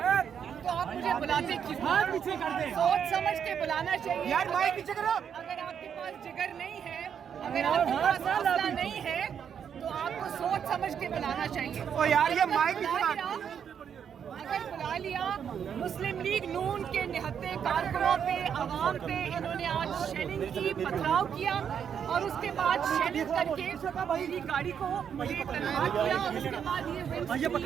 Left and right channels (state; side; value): quieter; left; 7.9 dB